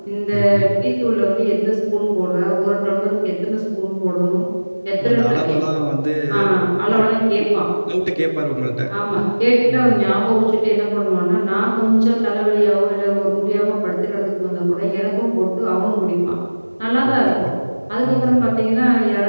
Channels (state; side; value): inverted; both; correlation -1.00